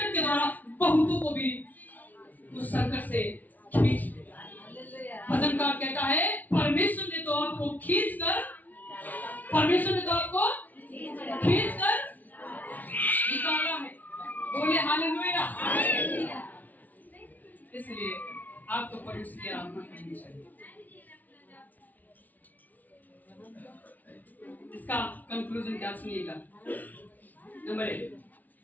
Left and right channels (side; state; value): right; late; 0.080 ms